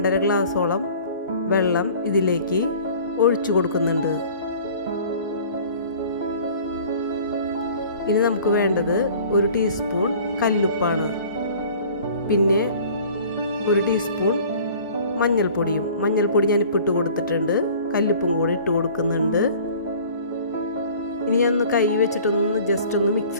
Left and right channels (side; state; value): both; inverted; correlation -0.47